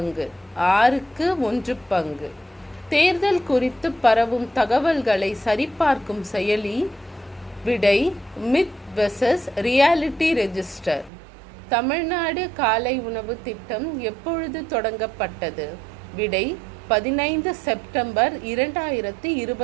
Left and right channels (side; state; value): left; drops out; at 11.1 s